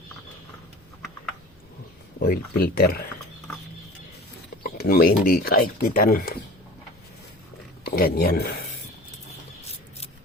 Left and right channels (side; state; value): both; normal; correlation 0.41